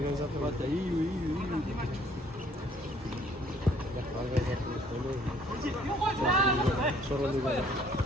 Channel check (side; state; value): both; normal; correlation 0.60